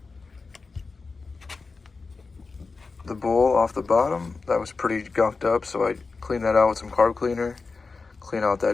bowl off the bottom. That was pretty gunked up, so I cleaned that out with some carb cleaner, clean out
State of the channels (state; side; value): quieter; right; 4.3 dB